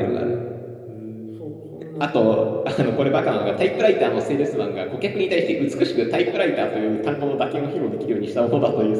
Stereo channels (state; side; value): identical; both; correlation 1.00